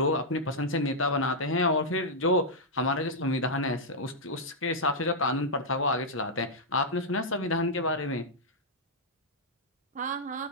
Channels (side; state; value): both; normal; correlation -0.07